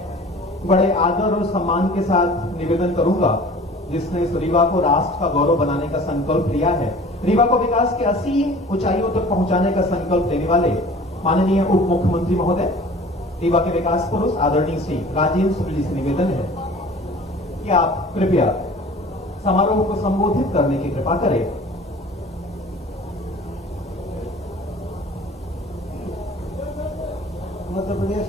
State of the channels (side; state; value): both; normal; correlation 0.45